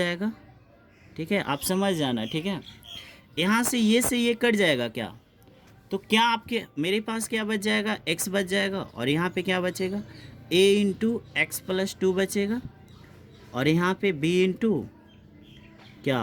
ठीक है, आप समझ जाना। ठीक है, यहाँ से ये कट जाएगा क्या, तो क्या आपके मेरे पास क्या बच जाएगा, x बच जाएगा, और यहाँ पे क्या बचेगा, a इंटू एक्स प्लस 2 बचेगा, और यहाँ पे b इंटू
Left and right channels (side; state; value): both; identical; correlation 1.00